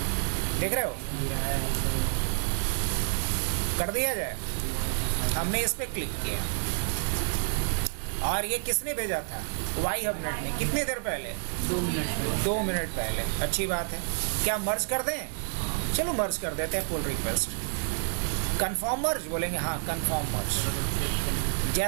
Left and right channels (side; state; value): left; silent; digital silence